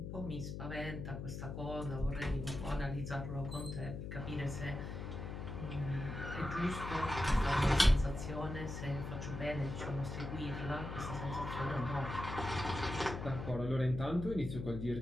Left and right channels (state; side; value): noise; left; hum, 6 dB below the sound